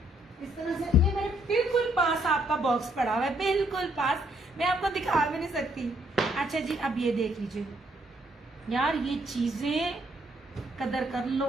इस तरह से, ये मेरे बिल्कुल पास आपका बॉक्स पड़ा हुआ है, बिल्कुल पास, मैं आपको दिखा भी नहीं सकती। अच्छा जी, अब ये देख लीजिए यार, ये चीजें कदर कर लो,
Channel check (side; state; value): both; normal; correlation 0.70